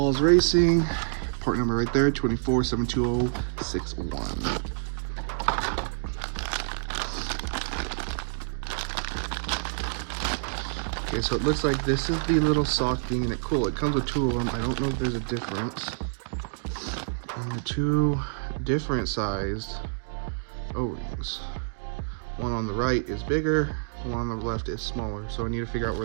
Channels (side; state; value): left; silent; digital silence